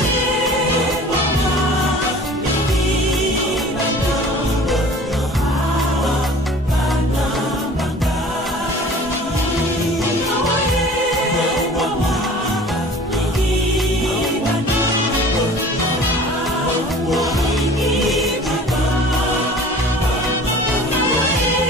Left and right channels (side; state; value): both; normal; correlation 0.45